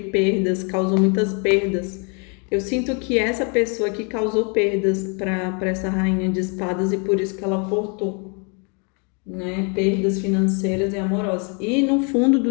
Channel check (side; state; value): right; quieter; 36.3 dB